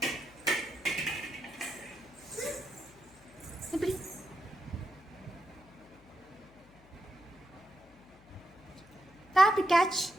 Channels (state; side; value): noise; left; hum, 25 dB below the sound